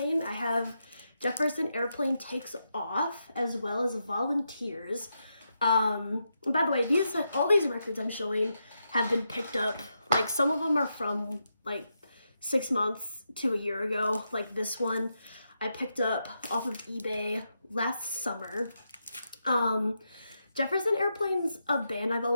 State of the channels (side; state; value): both; inverted; correlation -0.84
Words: I have Jefferson Airplane Takes Off, as well as Volunteers. By the way, all these records I'm showing have been picked up. Like, some of them are from like 6 months to a year ago. Like this one I picked up off of eBay last summer. Jefferson Airplane's a band I've